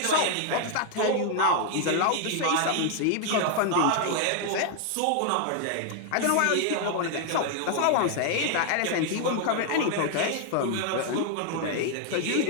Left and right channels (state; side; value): different; both; correlation 0.00